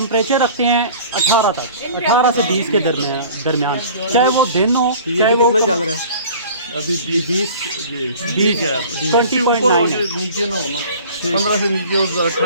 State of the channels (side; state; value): both; inverted; correlation -0.45